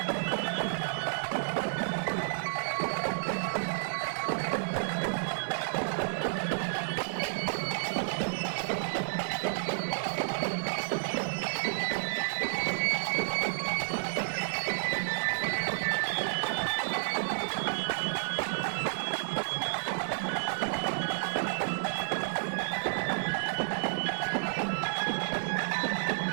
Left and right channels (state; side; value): silent; left; digital silence